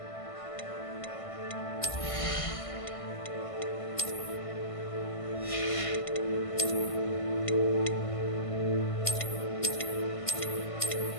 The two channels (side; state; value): right; late; 1.5 ms